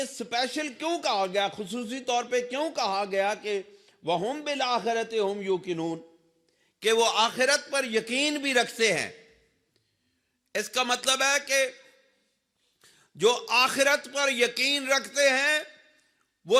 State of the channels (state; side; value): identical; both; correlation 1.00